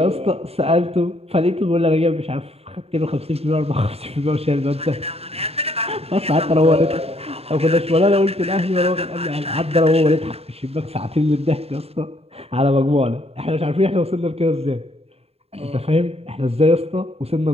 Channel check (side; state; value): left; late; 0.29 ms